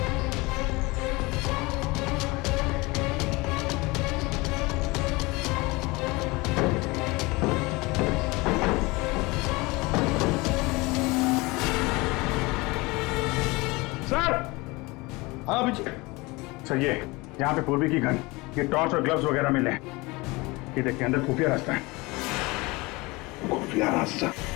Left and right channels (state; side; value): quieter; right; 23.7 dB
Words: सर। हाँ अभिजीत। सर ये यहाँ पे पूर्वी की गन, ये टॉर्च और ग्लव्स वगैरह मिले हैं। ये देखिए अंदर खुफिया रास्ता है। खुफिया रास्ता?